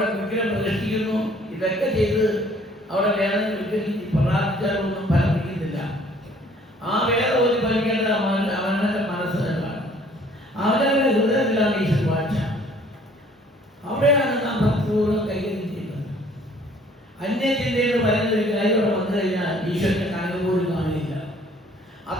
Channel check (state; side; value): normal; both; correlation 0.57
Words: വിഗ്രഹം പ്രതിഷ്ഠിക്കുന്നു. ഇതൊക്കെ ചെയ്ത് അവിടെ വേദന വിഗ്രഹിച്ച് പ്രാർത്ഥിച്ചാലൊന്നും ഫലമിക്കുന്നില്ല. ആ വേദ ഒരു ഫലിക്കേണ്ടത് അവനവന്റെ മനസ്സ് തന്നെയാണ്. അവനവന്റെ ഹൃദയത്തിലാണ് ഈശ്വര വാഴ്ച. അവിടെയാണ് നാം ഭക്തിപൂർവ്വം കൈകാര്യം ചെയ്യുന്നത്. അന്യചിന്തയിൽ പറയുന്നൊരു കാര്യം വന്നു കഴിഞ്ഞാൽ ഈശ്വരന്റെ കണക്ക് പോലും കാണില്ല.